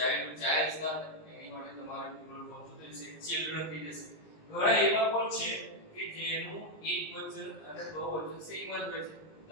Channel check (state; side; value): late; right; 20 ms